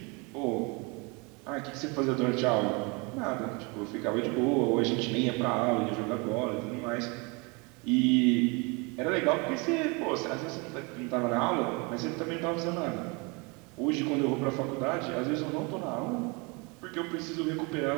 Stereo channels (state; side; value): quieter; left; 29.8 dB